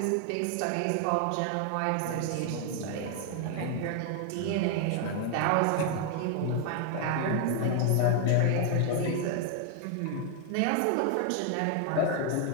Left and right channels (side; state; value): both; different; correlation 0.00